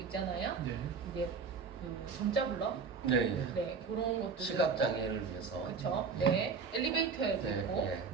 있잖아요. 이게 정자 블럭, 네, 그런 것들 시각 장애를 위해서. 그렇죠. 네, 엘리베이터에도 있고,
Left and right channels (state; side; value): quieter; left; 5.3 dB